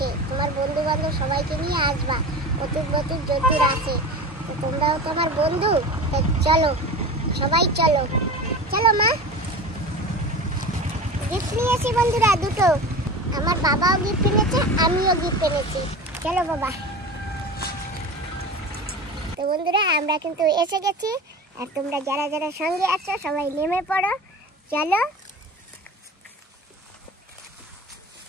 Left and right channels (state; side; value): normal; both; correlation 0.32